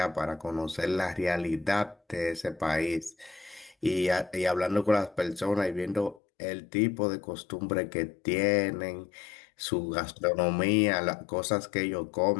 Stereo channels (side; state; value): right; drops out; at 6.2 s